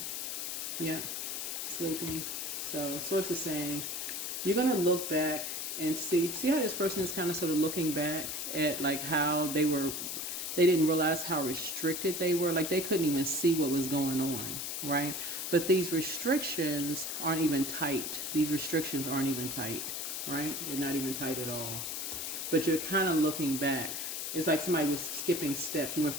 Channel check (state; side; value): noise; left; hiss, 4 dB below the sound